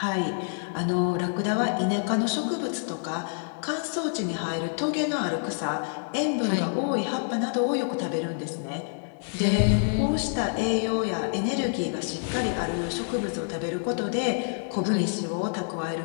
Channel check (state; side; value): silent; right; digital silence